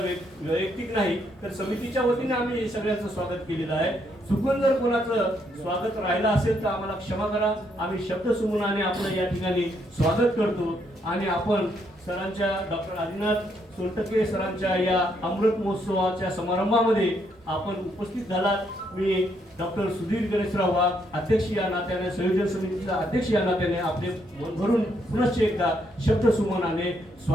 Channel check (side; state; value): both; normal; correlation 0.74